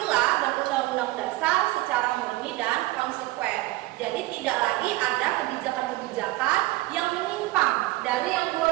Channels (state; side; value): quieter; left; 19.0 dB